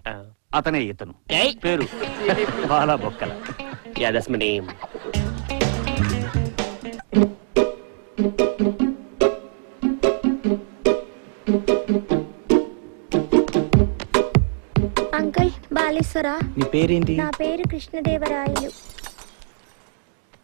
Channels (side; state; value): left; silent; digital silence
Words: అతనే ఇతను. పేరు Bala Bokkala. Yeah that's my name. Uncle బాలేశ్వరా. నీ పేరేంటి? నా పేరు కృష్ణదేవరాయలు.